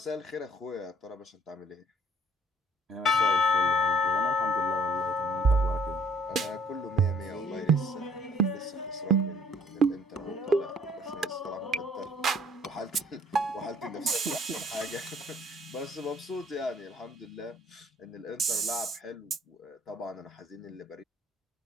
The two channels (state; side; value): normal; both; correlation 0.59